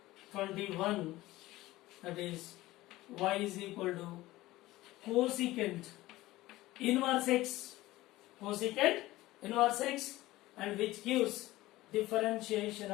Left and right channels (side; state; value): right; quieter; 17.6 dB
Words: 21, that is y is equal to cosecant inverse x, cosecant inverse x, and which gives differentiation